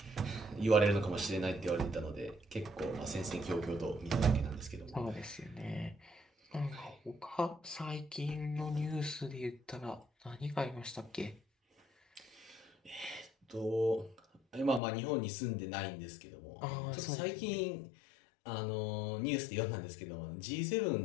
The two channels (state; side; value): drops out; right; at 14.8 s